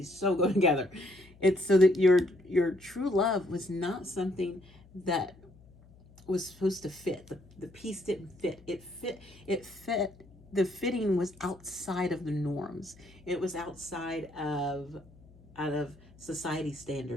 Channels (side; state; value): left; noise; hum, 25 dB below the sound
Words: so go together. It's so that your true love was not something that was supposed to fit. The piece didn't fit. It fit. The fitting was outside of the norms. It was outside of society